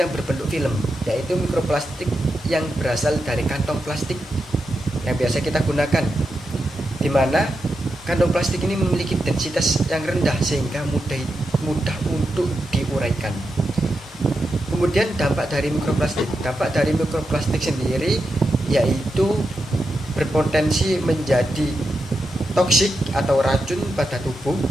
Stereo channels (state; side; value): normal; both; correlation 0.87